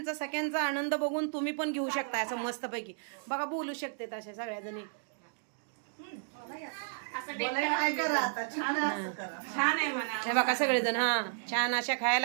सगळ्यांचा आनंद बघून तुम्ही पण घेऊ शकता असं मस्तपैकी. बघा बोलू शकते तशा सगळ्या जणी. छान आहे म्हणा. हे बघा सगळेजण हा छान अशा खायला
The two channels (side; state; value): left; silent; digital silence